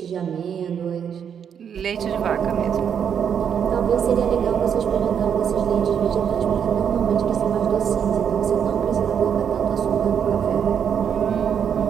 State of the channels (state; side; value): quieter; left; 7.9 dB